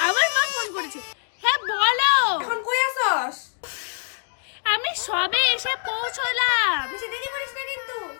আবার মা ফোন করেছে। হ্যাঁ বলো। এখন কই আছস? আমি সবে এসে পৌঁছলাম। বেশি দেরি করিস না কিন্তু।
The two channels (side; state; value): right; silent; digital silence